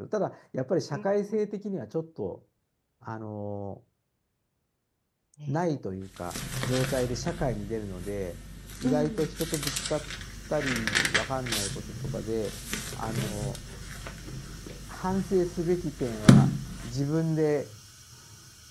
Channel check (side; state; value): both; identical; correlation 1.00